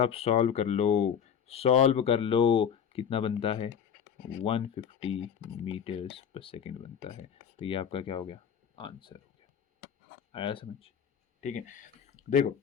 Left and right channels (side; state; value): right; quieter; 8.0 dB